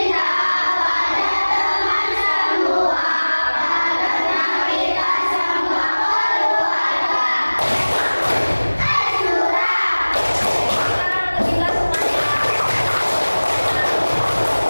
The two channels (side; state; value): both; inverted; correlation -1.00